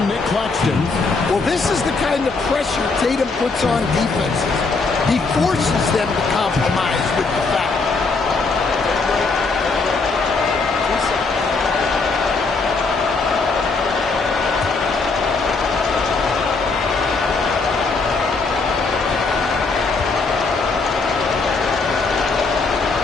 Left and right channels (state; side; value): quieter; right; 4.1 dB